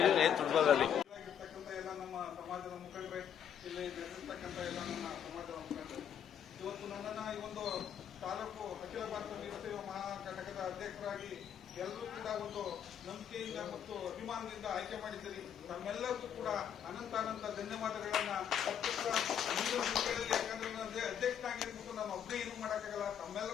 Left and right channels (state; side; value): quieter; right; 8.8 dB